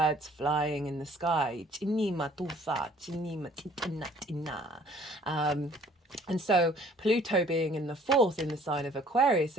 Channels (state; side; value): normal; both; correlation 0.56